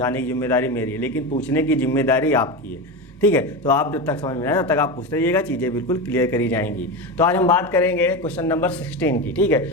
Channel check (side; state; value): both; normal; correlation 0.19